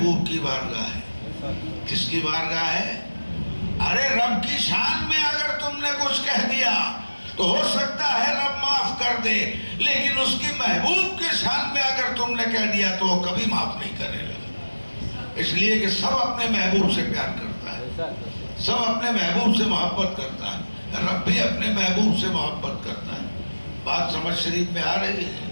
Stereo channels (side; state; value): both; inverted; correlation -1.00